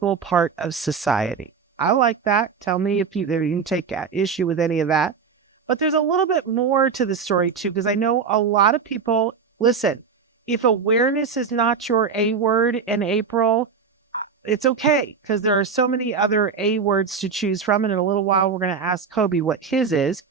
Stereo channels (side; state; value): left; quieter; 5.9 dB